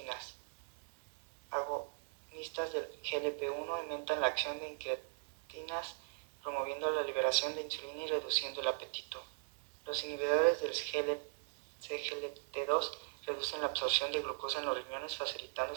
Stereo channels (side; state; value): left; silent; 52 dB below the other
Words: Agonistas del GLP-1 aumentan la acción de incretinas, promoviendo la liberación de insulina y reduciendo el apetito. Los inhibidores del CGLT2 reducen la absorción de glucosa en los riñones, facilitando